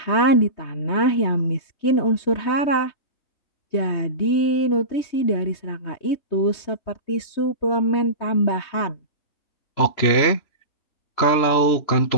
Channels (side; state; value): right; late; 3.2 ms